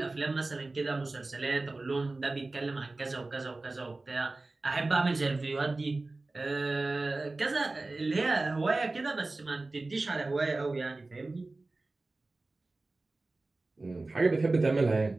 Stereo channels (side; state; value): left; quieter; 3.2 dB